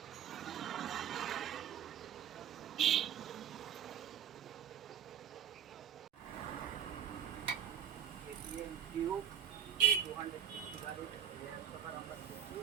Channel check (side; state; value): left; quieter; 9.4 dB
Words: KTM Duke 250 গাড়ির রেয়ার শকার আমরা খুলছি।